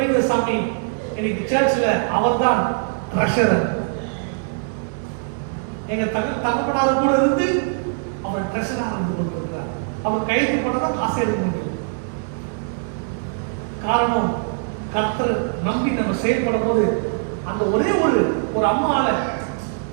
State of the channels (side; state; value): left; silent; 64 dB below the other